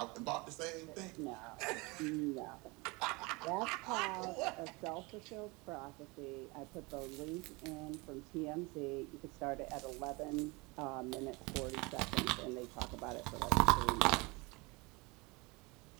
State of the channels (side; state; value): left; quieter; 26.0 dB